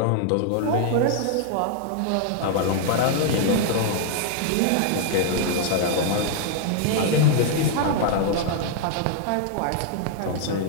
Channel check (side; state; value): both; different; correlation 0.00